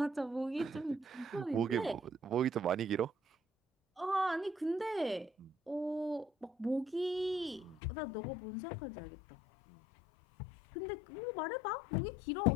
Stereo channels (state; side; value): drops out; right; at 7.8 s